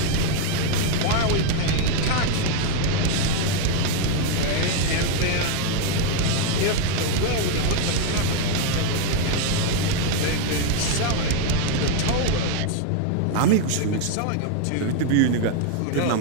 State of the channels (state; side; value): different; both; correlation 0.01